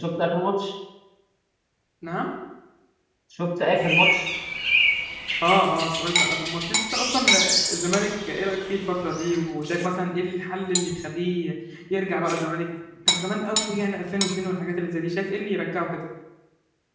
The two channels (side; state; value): both; identical; correlation 1.00